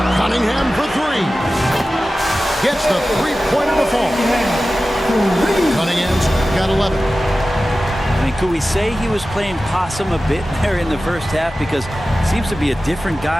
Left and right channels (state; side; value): normal; both; correlation 0.95